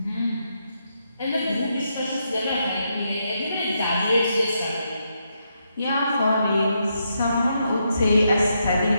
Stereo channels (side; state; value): both; inverted; correlation -0.80